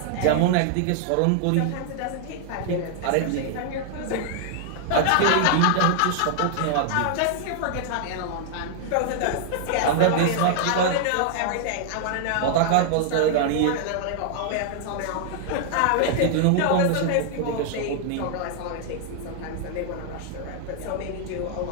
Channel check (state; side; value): different; both; correlation 0.00